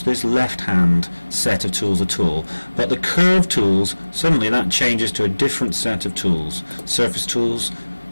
this left hand set of tools at all, but the curve tools, suddenly that changes to a different set of tools. Surface tools,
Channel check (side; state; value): both; inverted; correlation -1.00